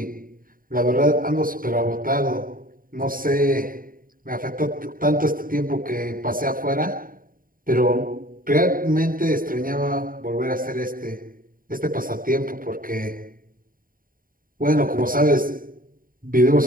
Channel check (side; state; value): left; late; 0.41 ms